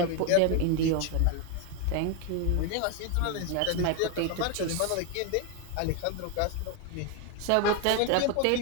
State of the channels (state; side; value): different; both; correlation 0.02